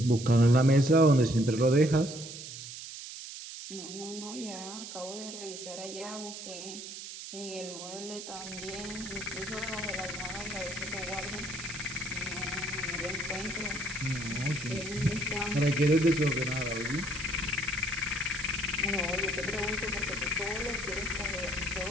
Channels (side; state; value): right; noise; hiss, 10 dB below the sound